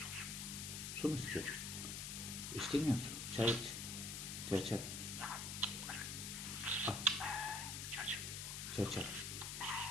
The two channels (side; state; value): left; noise; hiss, 4 dB below the sound